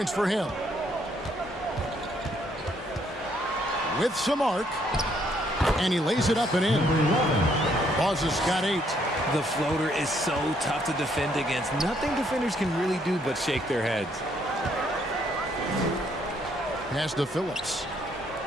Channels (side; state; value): both; normal; correlation 0.69